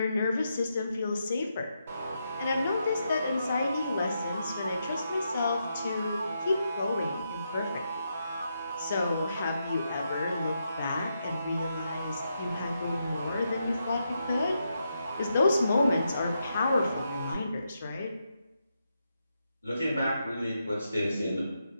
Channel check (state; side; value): inverted; both; correlation -0.83